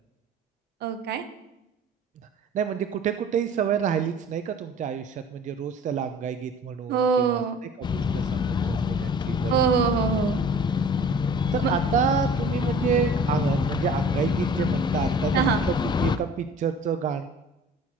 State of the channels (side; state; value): both; normal; correlation 0.46